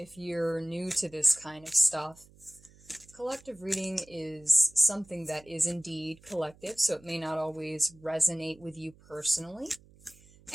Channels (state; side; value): noise; right; hum, 26 dB below the sound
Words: you're new to this kind of stuff, collective reading is something that is indeed collective, so it may not always resonate with you personally.